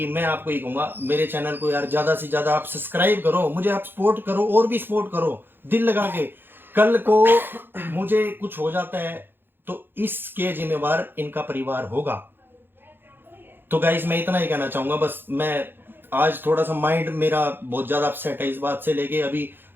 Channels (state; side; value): late; left; 0.10 ms